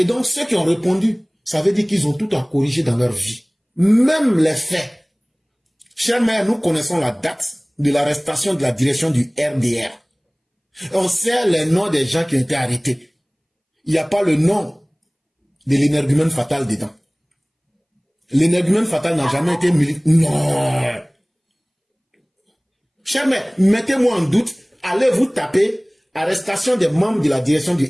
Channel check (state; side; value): identical; both; correlation 1.00